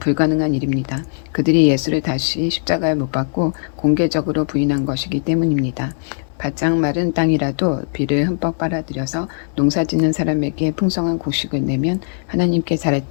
일입니다. 그들이 예수를 다시 십자가에 못 박고 공개적으로 부인한 것이기 때문입니다. 바짝 마른 땅이라도 비를 흠뻑 빨아들여서 농사짓는 사람에게 풍성한 곡식을 내면 하나님께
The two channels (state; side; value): silent; right; digital silence